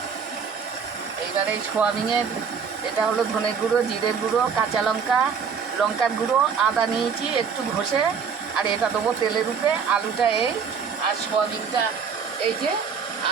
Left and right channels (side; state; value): left; quieter; 6.3 dB